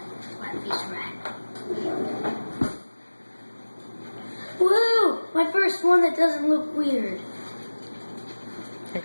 flat face rat. Woo! My first one that doesn't look weird.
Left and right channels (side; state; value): both; inverted; correlation -1.00